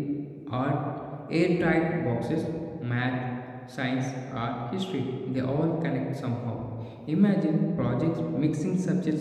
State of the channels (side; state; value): both; identical; correlation 1.00